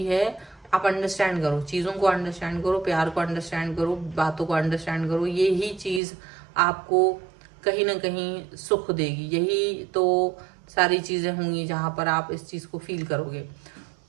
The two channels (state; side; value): drops out; left; at 6.0 s